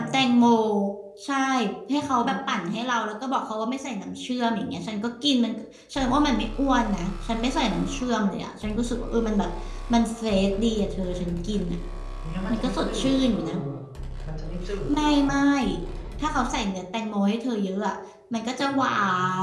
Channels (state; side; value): identical; both; correlation 1.00